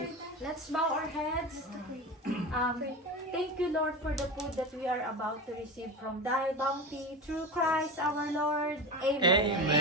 let's bow our heads. Thank you, Lord, for the food that we are about to receive from thy bounty through Christ our Lord. Amen.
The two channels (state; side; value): normal; both; correlation 0.25